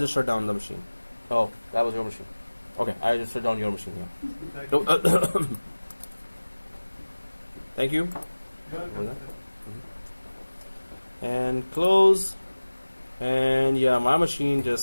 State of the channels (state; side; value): inverted; both; correlation -1.00